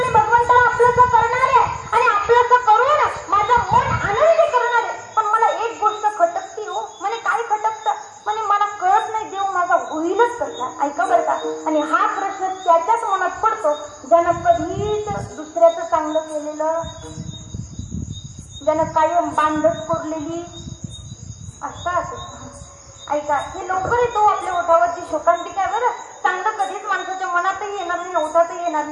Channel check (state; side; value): identical; both; correlation 1.00